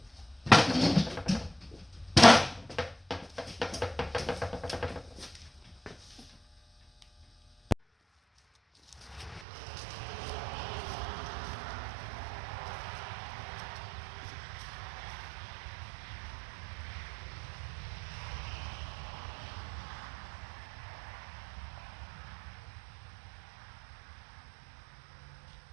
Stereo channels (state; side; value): drops out; left; at 9.5 s